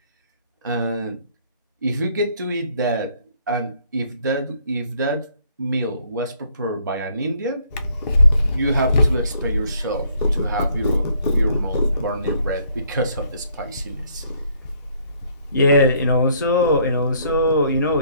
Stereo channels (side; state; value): both; inverted; correlation -0.65